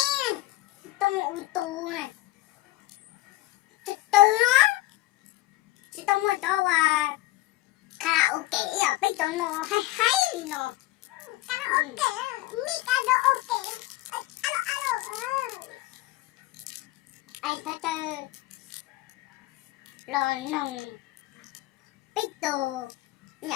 Chị tông ô tô này. Từ từ nó. Chị tông cho karaoke à, bây giờ nó hay nó. Karaoke, mi karaoke. Alo. Ai ta tơ. Rồi nồng. Bây giờ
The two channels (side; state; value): right; quieter; 17.7 dB